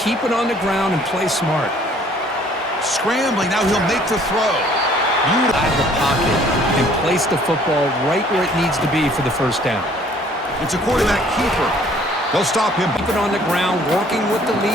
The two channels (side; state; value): both; normal; correlation 0.58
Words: it on the ground and play smart. Scrambling. Now he'll make the throw. Out of the pocket and place the football right where it needs to be for the 1st down. It's a quarterback keeper. They'll stop him. Keep it on the ground, working with the